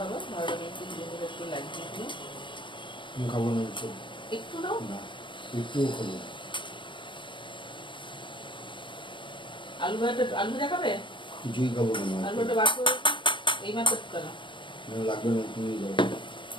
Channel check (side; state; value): right; late; 0.24 ms